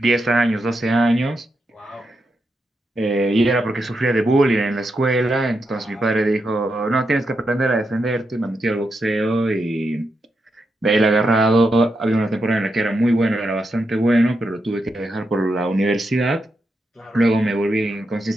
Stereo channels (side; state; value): both; normal; correlation 0.84